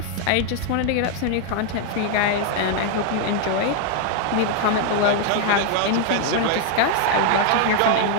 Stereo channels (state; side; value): different; both; correlation 0.00